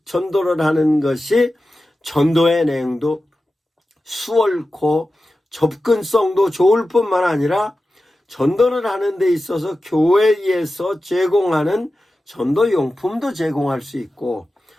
전도를 하는 것이 전도의 내용도 수월코 접근성도 좋을 뿐만 아니라 전도를 하는 데 있어서 교회에서 제공하는 전도용품도 제공할 수 있고,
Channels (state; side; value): normal; both; correlation 0.93